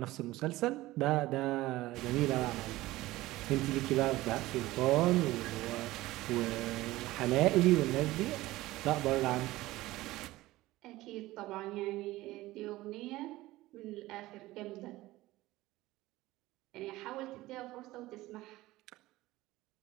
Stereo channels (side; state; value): left; quieter; 17.8 dB